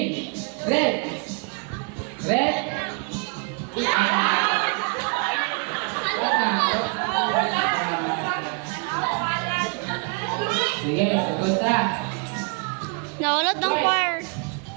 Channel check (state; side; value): quieter; left; 37.3 dB